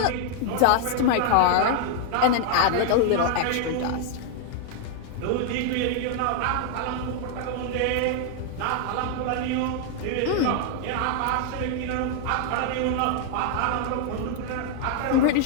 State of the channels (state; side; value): different; both; correlation 0.00